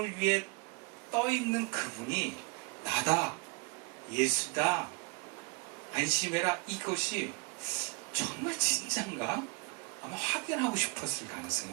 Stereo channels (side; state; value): left; quieter; 30.7 dB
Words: 위에 떠있는 그분이 나다, 예수다, 안심해라 이것이 정말 진짠가? 아마 확인하고 싶었을 가능성이